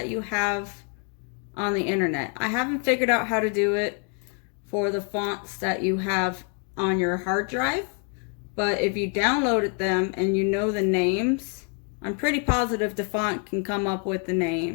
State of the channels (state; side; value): quieter; right; 38.8 dB